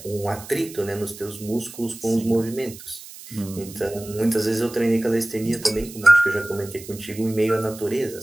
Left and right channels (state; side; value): noise; right; hiss, 16 dB below the sound